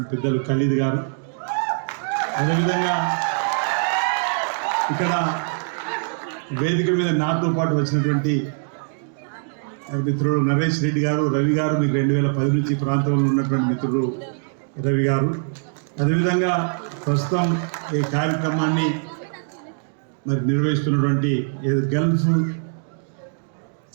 పెద్దలు ఖలీద్ గారు, అదేవిధంగా ఇక్కడ వేదిక మీద నాతో పాటు వచ్చినటువంటి మిత్రుడు నరేష్ రెడ్డి గారు, రవి గారు, మీకు 2010 నుంచి ప్రాంతంలో ఉన్నటువంటి మిత్రుడు రవి గారు, అదేవిధంగా ప్రస్తుతం ఈ కార్యక్రమాన్ని మరి నిర్వహిస్తున్నటువంటి గల్ఫ్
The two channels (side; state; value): left; silent; digital silence